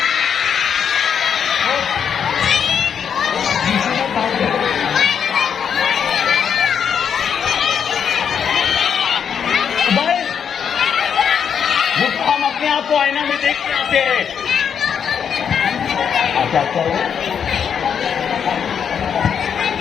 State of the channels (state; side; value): quieter; right; 7.6 dB